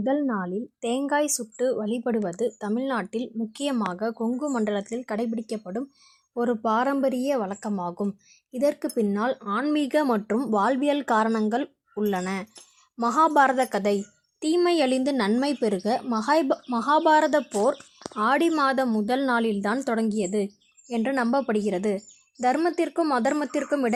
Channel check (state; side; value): identical; both; correlation 1.00